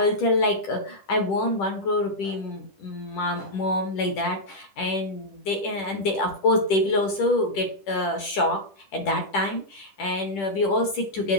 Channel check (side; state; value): right; late; 10 ms